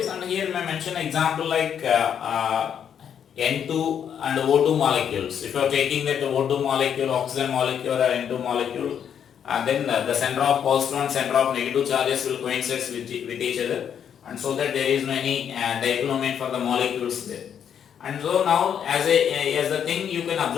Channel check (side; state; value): right; quieter; 8.5 dB